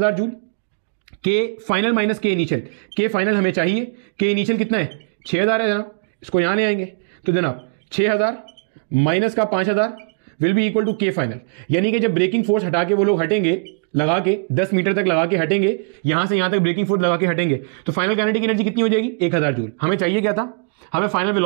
joule, K final minus K initial, K final हमें चाहिए, के इनिशियल कितना है 6000 है जनाब, इसको यहां ले आएंगे तो जनाब 6000 माइनस का 5000 विल बी इक्वल टू के फाइनल। यानी कि जब ब्रेकिंग फोर्स हटा के वो लोग हटेंगे, लगा के 10 मीटर तक लगा के हटेंगे, यहां से यहां तक ब्रेकिंग फोर्स लगा के हटेंगे, तो फाइनल काइनेटिक एनर्जी कितनी हो जाएगी 1000 जूल। हमें चाहिए क्या था, हमें फाइनल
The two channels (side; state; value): left; quieter; 38.7 dB